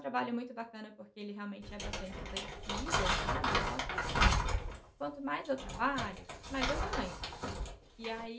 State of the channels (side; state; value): both; identical; correlation 1.00